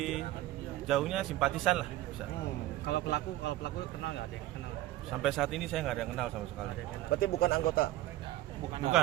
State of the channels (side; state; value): left; quieter; 15.6 dB